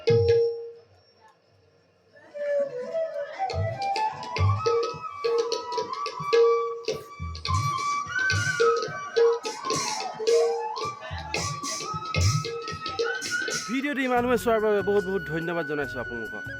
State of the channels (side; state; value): both; identical; correlation 1.00